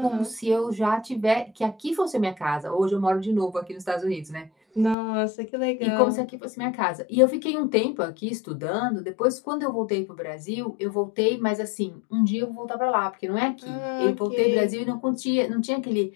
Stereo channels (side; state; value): right; drops out; at 5.0 s